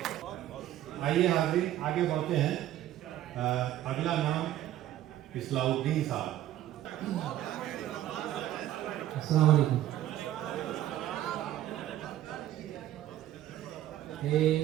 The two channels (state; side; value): quieter; left; 13.1 dB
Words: आइए हाज़रीन आगे बढ़ते हैं। अगला नाम इस्लाउद्दीन साहब। अस्सलाम वालेकुम। ये